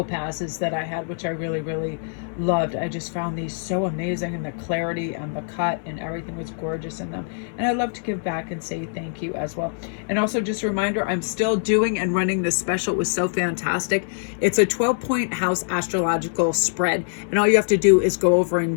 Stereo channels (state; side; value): silent; right; 63 dB below the other